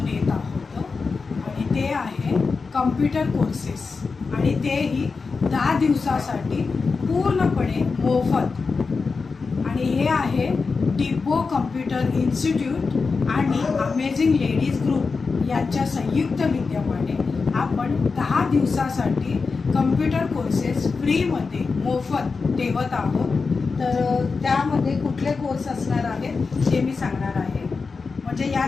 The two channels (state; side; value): quieter; right; 4.6 dB